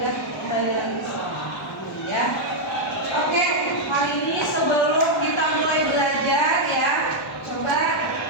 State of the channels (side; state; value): both; normal; correlation -0.02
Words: kembali lagi ya. Oke, hari ini sebelum kita mulai belajar ya, coba